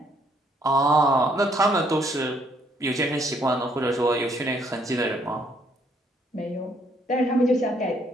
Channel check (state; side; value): normal; both; correlation 0.68